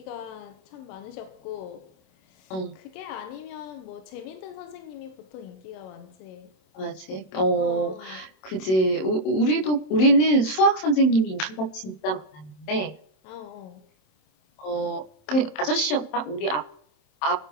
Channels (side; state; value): right; late; 27 ms